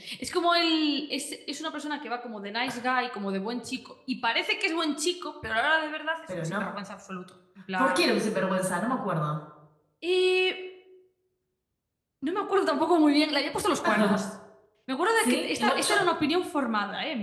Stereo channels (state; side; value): identical; both; correlation 1.00